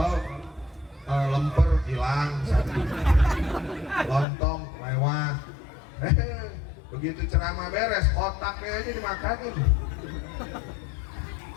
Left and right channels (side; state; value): right; drops out; at 4.2 s